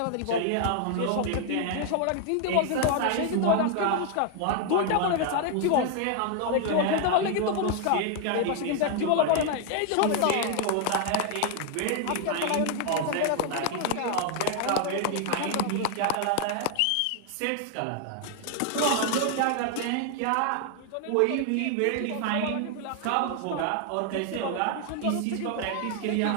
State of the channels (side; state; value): both; different; correlation 0.00